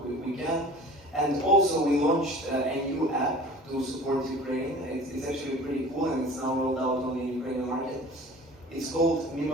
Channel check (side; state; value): both; normal; correlation 0.42